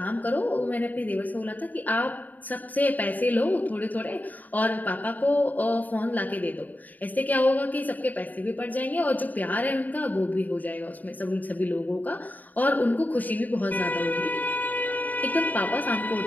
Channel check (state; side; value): late; right; 0.081 ms